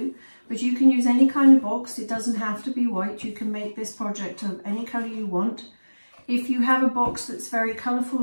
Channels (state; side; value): inverted; both; correlation -1.00